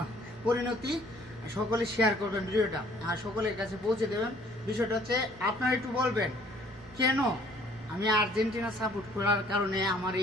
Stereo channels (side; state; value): both; normal; correlation 0.58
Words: পরিণতি। সকলে শেয়ার করবেন ভিডিওটা আর সকলের কাছে পৌঁছে দেবেন। বিষয়টা হচ্ছে আপনারা একটু বলবেন কেন আমি আর্জেন্টিনা সাপোর্ট করার কারণে আমার